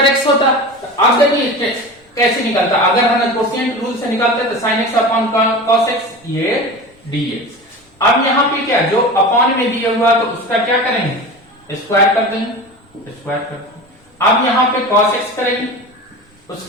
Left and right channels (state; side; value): normal; both; correlation 0.31